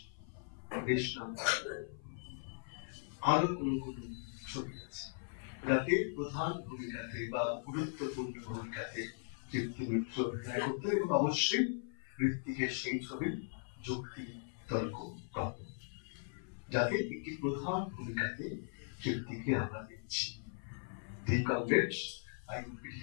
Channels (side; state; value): right; silent; 52 dB below the other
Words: বেশ নাম করা, আরো কোন কোন ছবি আছে যাতে প্রধান ভূমিকাতে বা গুরুত্বপূর্ণ ভূমিকাতে তৃপ্তি মিত্র অভিনয় করতেন, এবং অবশ্যই ঋত্বিকের সেই ছবি যুক্তি তর্ক গল্প, যাতে একটি প্রধান ভূমিকাতে তৃপ্তিকে আমরা দেখছি। The comrade, I repeat